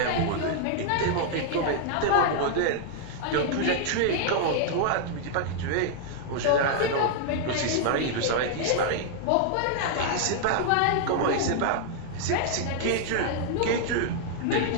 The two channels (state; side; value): different; both; correlation -0.01